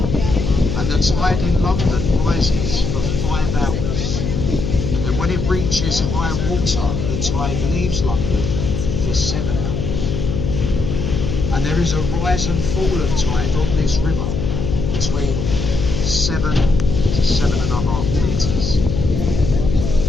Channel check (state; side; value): noise; left; hum, 2 dB below the sound